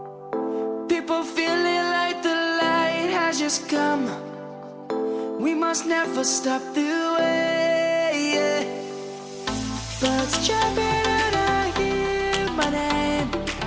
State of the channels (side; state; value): both; identical; correlation 1.00